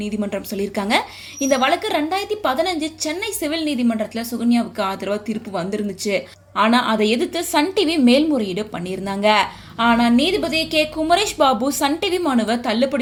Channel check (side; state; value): both; identical; correlation 1.00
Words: நீதிமன்றம் சொல்லியிருக்காங்க. இந்த வழக்கு 2015 சென்னை சிவில் நீதிமன்றத்தில் சுகன்யாவுக்கு ஆதரவாக தீர்ப்பு வந்திருந்துச்சு. ஆனா அதை எதிர்த்து சன் டிவி மேல்முறையீடு பண்ணியிருந்தாங்க. ஆனா நீதிபதி K Kumaresh Babu Sun TV மனுவை